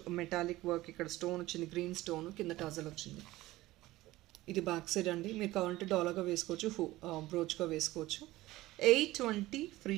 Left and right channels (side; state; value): left; quieter; 17.5 dB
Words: metallic work. ఇక్కడ స్టోన్ వచ్చింది, గ్రీన్ స్టోన్, కింద టజల్ వచ్చింది. ఇది బ్యాక్ సైడ్ అండి. మీరు కావాలంటే డాలర్గా వేసుకోవచ్చు, బ్రోచ్గా వేసుకోవచ్చు. 820 free